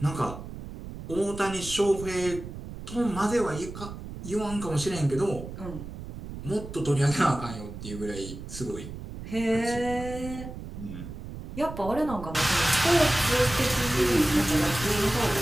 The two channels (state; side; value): noise; right; rumble, 11 dB below the sound